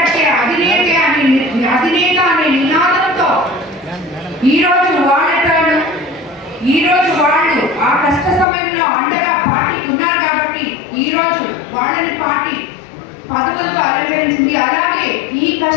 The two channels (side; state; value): right; drops out; at 8.5 s